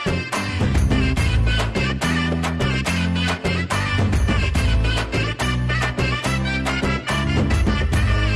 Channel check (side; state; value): both; identical; correlation 1.00